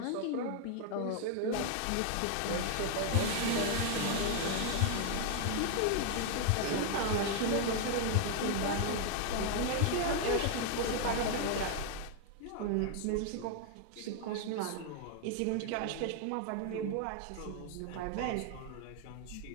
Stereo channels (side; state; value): both; different; correlation 0.00